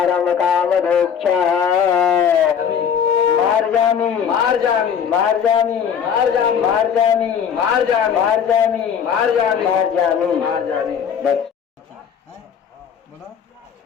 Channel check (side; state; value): right; quieter; 7.7 dB